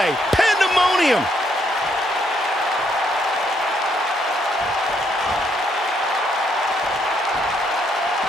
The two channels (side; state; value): both; normal; correlation 0.73